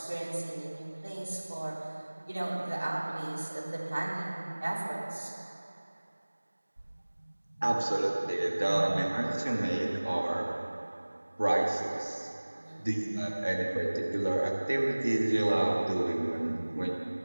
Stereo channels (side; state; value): both; inverted; correlation -1.00